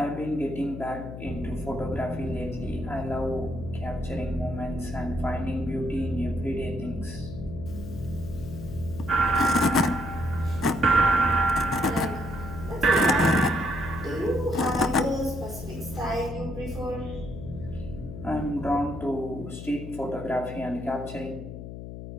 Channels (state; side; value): noise; left; hum, 10 dB below the sound